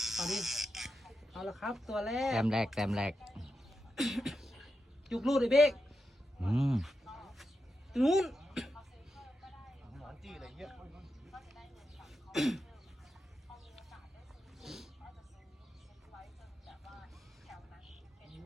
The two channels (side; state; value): both; normal; correlation 0.88